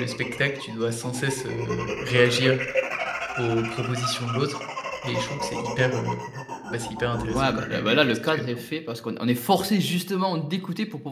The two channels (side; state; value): both; identical; correlation 1.00